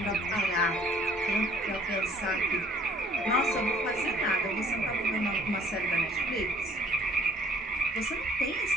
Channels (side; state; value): both; normal; correlation 0.56